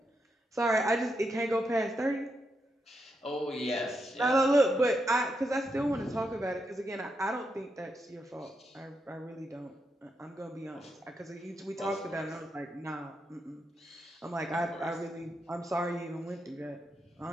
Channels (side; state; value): both; normal; correlation 0.83